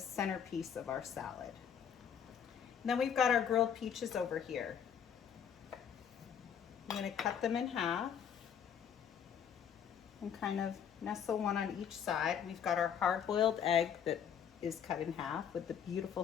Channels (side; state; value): right; quieter; 8.2 dB